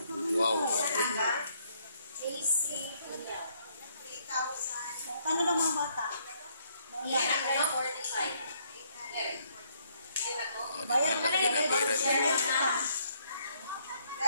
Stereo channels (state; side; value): inverted; both; correlation -0.69